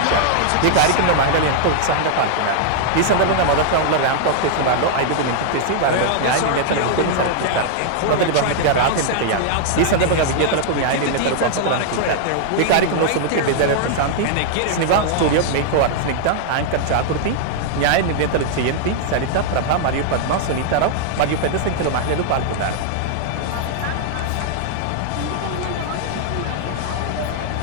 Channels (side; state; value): both; different; correlation -0.01